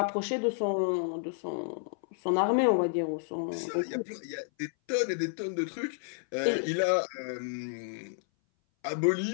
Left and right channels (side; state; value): right; silent; 57 dB below the other